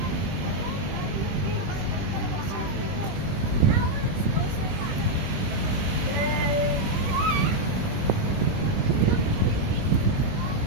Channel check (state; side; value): late; left; 20 ms